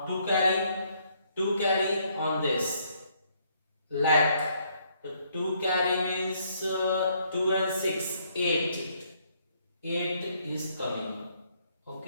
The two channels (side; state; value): both; inverted; correlation -0.69